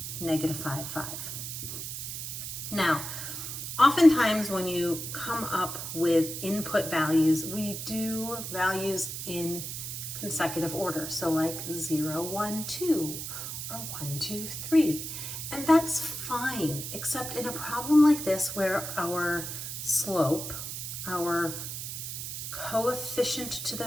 -5, 5. Now, oftentimes when you come up with input values, we do values in consecutive order. So like 0, 1, 2, or 1, 2, 3. And that's fine, except in a problem like this where our slope, our coefficient to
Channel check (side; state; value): right; noise; hiss, 6 dB below the sound